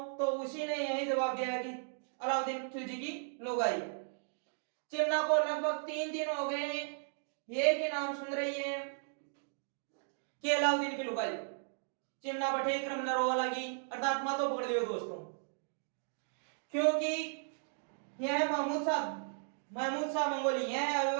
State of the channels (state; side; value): silent; left; digital silence